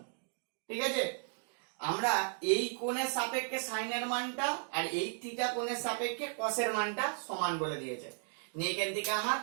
ঠিক আছে। আমরা এই কোণের সাপেক্ষে সাইনের মানটা আর এই থিটা কোণের সাপেক্ষে কসের মানটা সমান বলে দিয়েছে, এখান থেকে আমার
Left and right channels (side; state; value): left; silent; 54 dB below the other